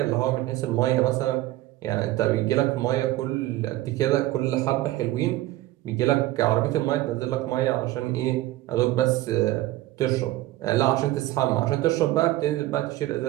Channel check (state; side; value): quieter; left; 16.3 dB